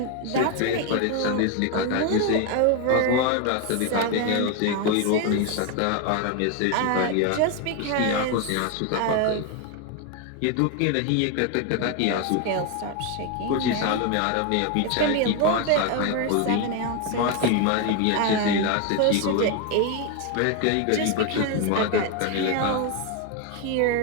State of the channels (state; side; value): different; both; correlation 0.02